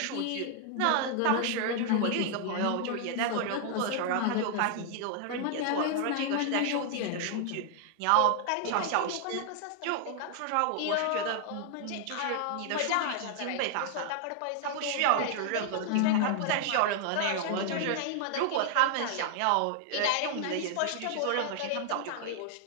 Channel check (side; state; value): both; different; correlation 0.00